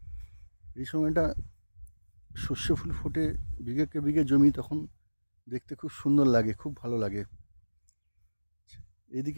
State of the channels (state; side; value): inverted; both; correlation -1.00